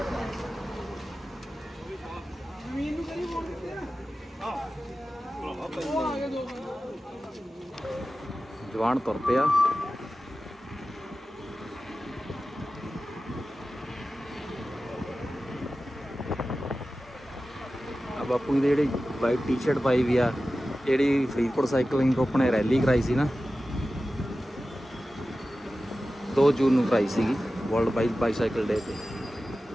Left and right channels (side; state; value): both; normal; correlation 0.94